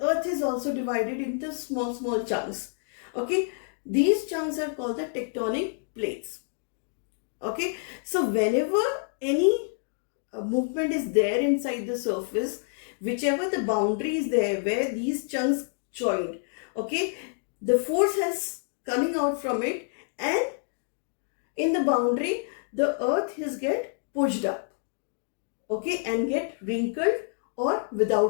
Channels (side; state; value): right; silent; digital silence